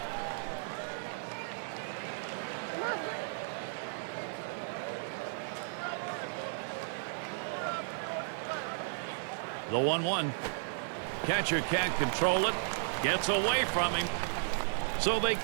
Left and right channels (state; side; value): silent; left; 55 dB below the other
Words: The 1-1. Catcher can't control it. Gets away from him. So they